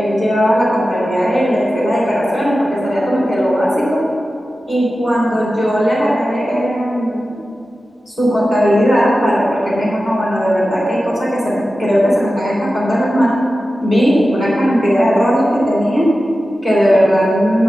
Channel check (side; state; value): both; normal; correlation 0.94